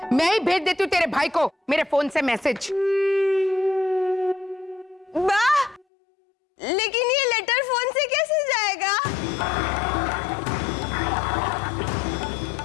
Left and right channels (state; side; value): drops out; right; at 5.9 s